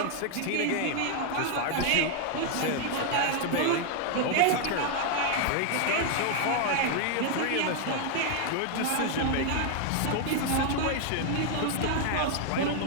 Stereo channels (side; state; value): both; different; correlation 0.00